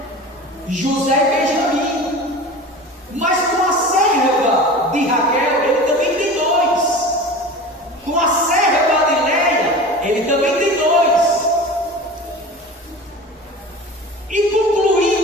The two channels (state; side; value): normal; both; correlation 0.35